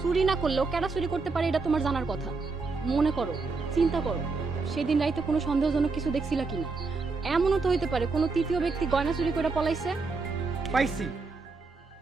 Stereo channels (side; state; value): left; quieter; 4.1 dB